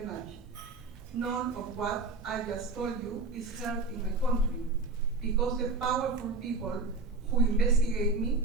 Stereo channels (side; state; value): left; quieter; 3.4 dB